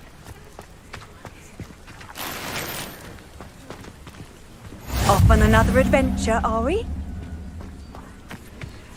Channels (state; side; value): identical; both; correlation 1.00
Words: Off on another adventure, are we?